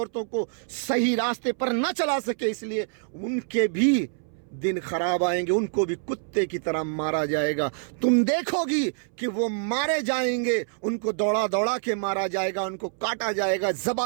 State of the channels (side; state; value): left; silent; 61 dB below the other